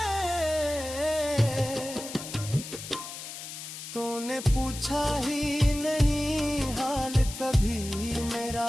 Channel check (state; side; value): noise; left; hiss, 10 dB below the sound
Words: तूने पूछा ही नहीं हाल कभी मेरा,